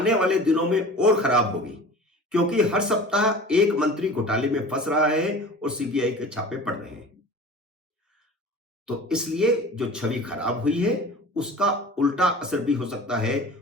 वाले दिनों में और खराब होगी, क्योंकि हर सप्ताह एक मंत्री घोटाले में फंस रहा है और सीबीआई के छापे पड़ रहे हैं। तो इसलिए जो छवि खराब हुई है उसका उल्टा असर भी हो सकता है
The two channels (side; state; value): both; normal; correlation 0.40